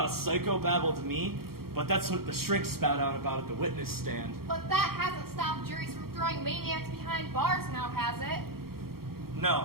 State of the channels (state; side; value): late; left; 0.94 ms